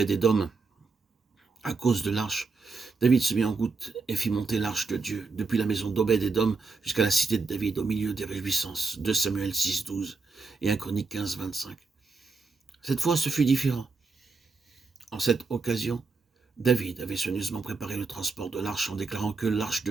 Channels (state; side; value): quieter; left; 4.2 dB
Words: à cause de l'arche, David se mit en route et fit monter l'arche de Dieu depuis la maison d'Obed-Édom jusqu'à la cité de David au milieu des réjouissances. 2 Samuel 6, 12 et 1 Chronique 15, 25. Cette fois, ce fut différent. En cette occasion, David avait soigneusement préparé le transport de l'arche en déclarant que l'arche